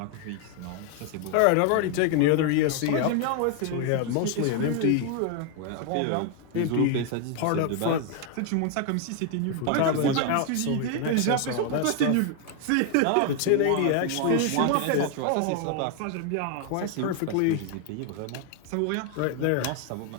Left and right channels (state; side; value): different; both; correlation 0.01